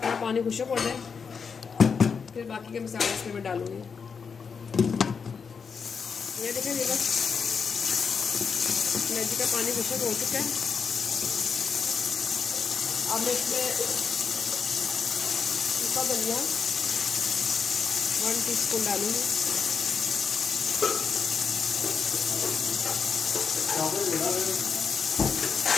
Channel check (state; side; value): quieter; right; 5.9 dB